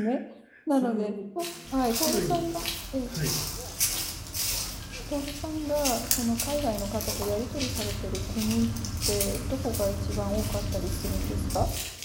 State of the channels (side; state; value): both; identical; correlation 1.00